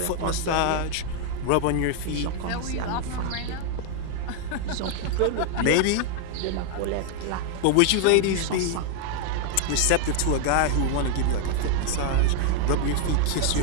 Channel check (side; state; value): both; different; correlation 0.00